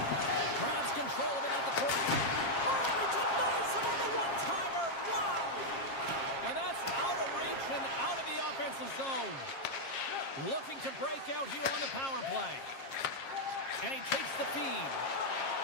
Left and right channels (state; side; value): late; right; 7.4 ms